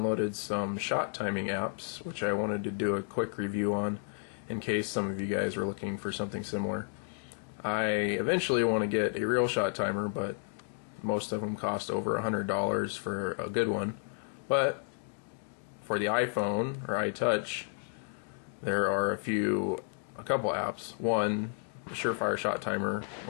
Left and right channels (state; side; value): silent; right; digital silence